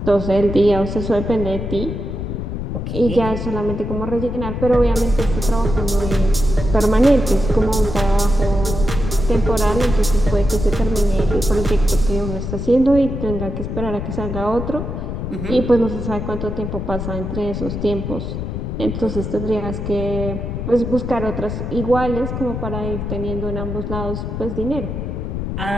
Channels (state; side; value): noise; left; rumble, 4 dB below the sound